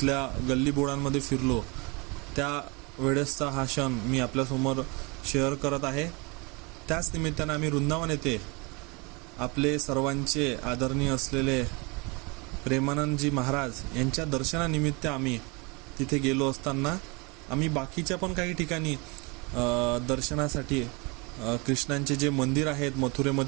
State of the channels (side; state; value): left; quieter; 28.7 dB